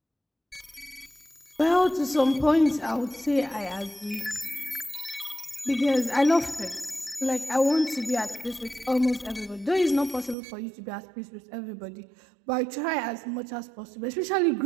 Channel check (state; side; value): drops out; left; at 10.4 s